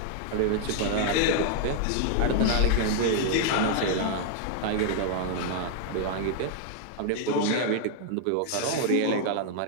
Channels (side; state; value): both; different; correlation 0.00